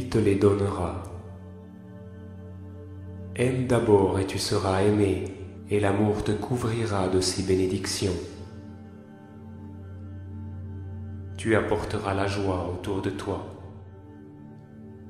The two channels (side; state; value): both; identical; correlation 1.00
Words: te les donnera. Aime d'abord et tu seras aimé, et l'amour te couvrira de ses bénédictions. Tu apporteras la joie autour de toi.